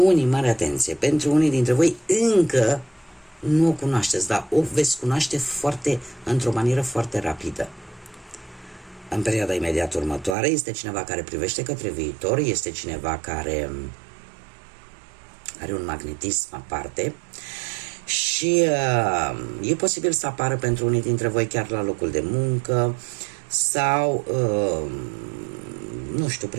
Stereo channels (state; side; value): drops out; left; at 10.4 s